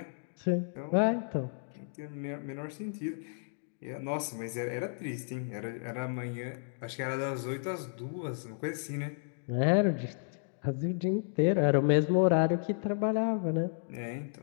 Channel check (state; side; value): silent; right; digital silence